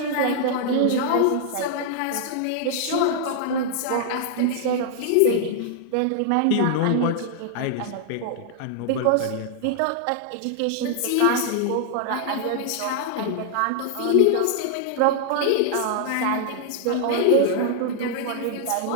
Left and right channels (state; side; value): different; both; correlation -0.01